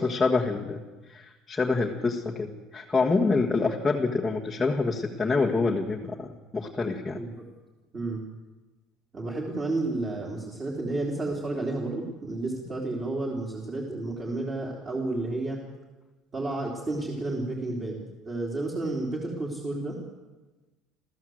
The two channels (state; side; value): normal; both; correlation 0.82